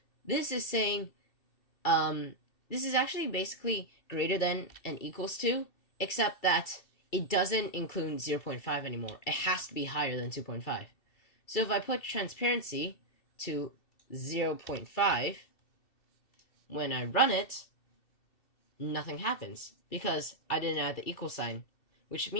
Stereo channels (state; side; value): late; right; 2.7 ms